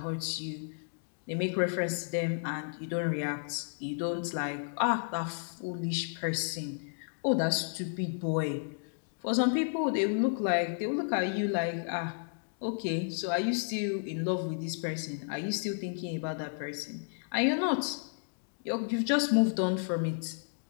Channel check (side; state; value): right; silent; digital silence